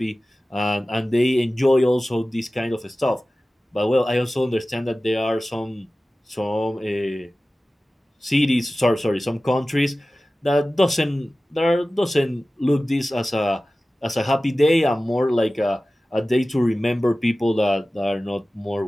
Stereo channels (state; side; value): normal; both; correlation 0.96